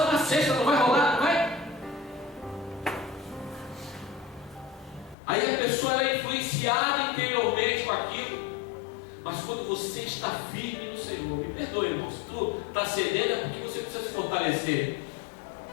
na sexta, não vai rolar, não vai? Aí a pessoa é influenciada interiormente com aquilo. Mas quando você está firme no Senhor, me perdoe, irmão, se tu está cedendo é porque você precisa se fortalecer.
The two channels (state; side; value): drops out; right; at 5.2 s